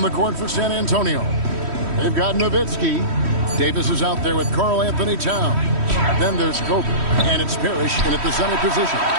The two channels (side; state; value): left; late; 3.1 ms